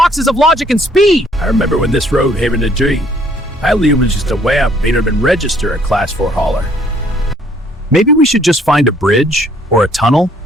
of logic and speed. I remember when this road had a dream. I was just a wamp, made him register a Class 4 hauler. Maybe we should just find a bridge, or a tunnel,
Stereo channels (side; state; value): both; normal; correlation 0.63